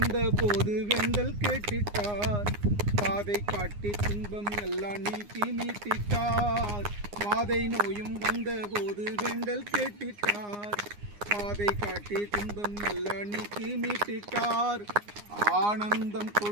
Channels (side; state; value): left; late; 9.7 ms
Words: போது வெண்டல் கேட்டிட்டார், பாதை காட்டி துன்பம் எல்லாம் நீக்கி மீட்டிட்டார். வாதை நோயும் வந்த போது வெண்டல் கேட்டிட்டார், பாதை காட்டி துன்பம் எல்லாம் நீக்கி மீட்டிட்டார். ஆனந்தம்